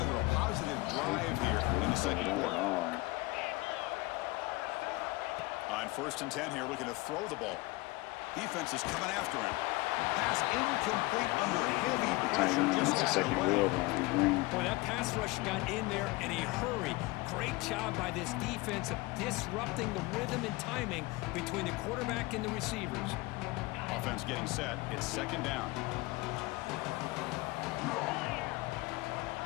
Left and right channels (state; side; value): quieter; right; 22.2 dB